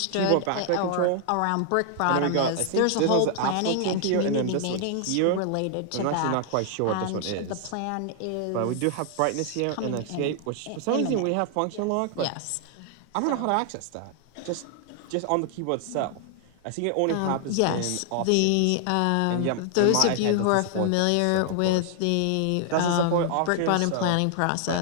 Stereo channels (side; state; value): both; different; correlation 0.00